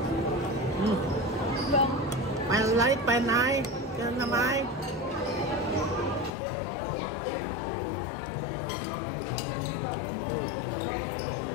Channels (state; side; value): drops out; right; at 6.3 s